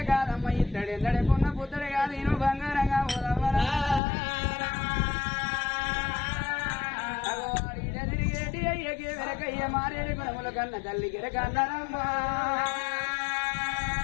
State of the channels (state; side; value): drops out; right; at 4.0 s